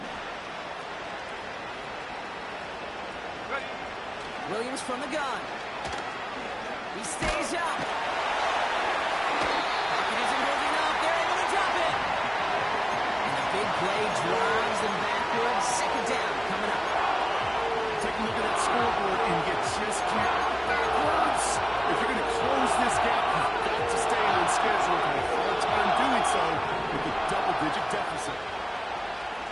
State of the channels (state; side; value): identical; both; correlation 1.00